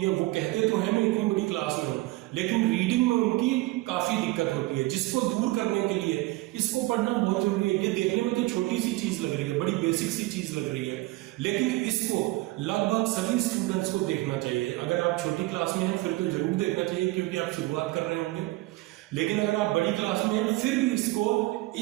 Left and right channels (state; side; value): quieter; left; 20.1 dB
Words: वो कहते तो हैं मैं इतनी बड़ी क्लास में हूँ, लेकिन रीडिंग में उनकी काफी दिक्कत होती है, जिसको दूर करने के लिए इसको पढ़ना बहुत जरूरी है। ये देखने में तो छोटी सी चीज लग रही है, बड़ी बेसिक सी चीज लग रही है, लेकिन इसको लगभग सभी स्टूडेंट्स को देखना चाहिए। अगर आप छोटी क्लास में हैं फिर तो जरूर देखना चाहिए, क्योंकि आप शुरुआत कर रहे होंगे। लेकिन अगर आप बड़ी क्लास में हैं फिर भी इसको